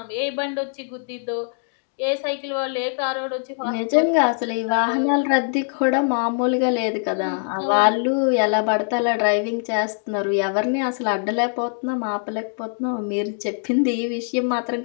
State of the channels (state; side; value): silent; right; 64 dB below the other